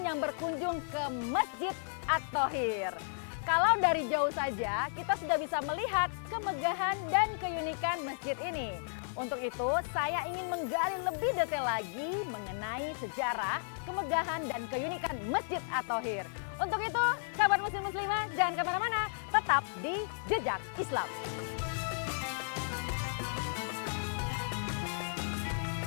yang berkunjung ke Masjid At-Thohir. Kalau dari jauh saja kita sudah bisa melihat kemegahan dan keunikan masjid ini. Untuk itu, saya ingin menggali lebih detail lagi mengenai sejarah, kemegahan, dan keunikan Masjid At-Thohir. Untuk itu, sahabat muslim-muslimah, jangan kemana-mana, tetap di Jejak Islam.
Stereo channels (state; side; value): silent; right; digital silence